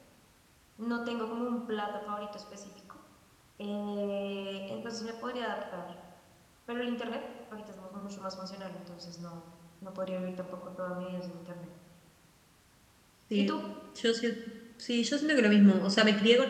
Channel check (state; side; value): identical; both; correlation 1.00